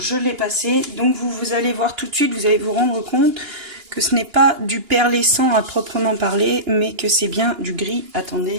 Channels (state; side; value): late; left; 2.9 ms